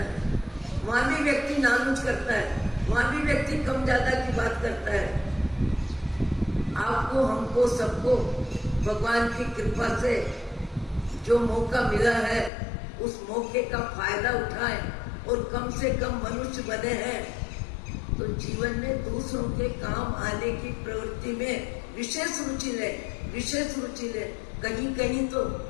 वहां भी व्यक्ति नानुच करता है, वहां भी व्यक्ति कम ज्यादा की बात करता है। आपको, हमको, सबको भगवान की कृपा से जो मौका मिला है उस मौके का फायदा उठाएं और कम से कम मनुष्य बने हैं तो जीवन में दूसरों के काम आने की प्रवृत्ति में विशेष रुचि ले, विशेष रुचि ले। कहीं कहीं तो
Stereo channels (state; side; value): drops out; right; at 12.5 s